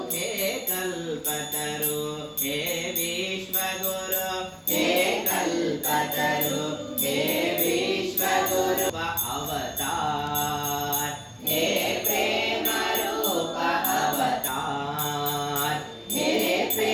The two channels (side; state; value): both; identical; correlation 1.00